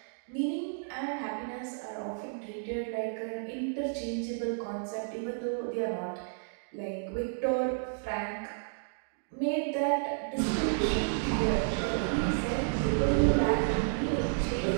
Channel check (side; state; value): left; silent; digital silence